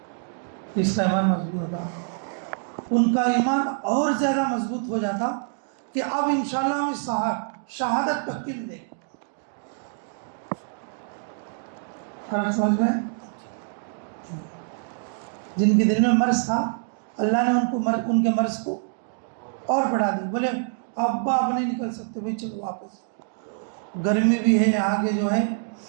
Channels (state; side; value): silent; left; digital silence